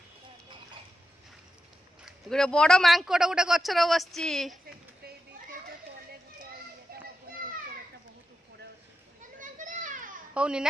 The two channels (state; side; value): normal; both; correlation 0.90